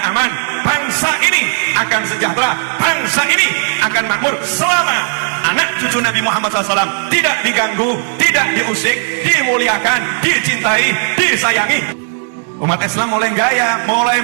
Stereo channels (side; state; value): left; silent; digital silence